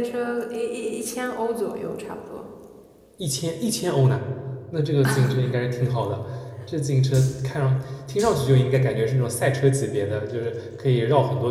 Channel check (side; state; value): both; identical; correlation 1.00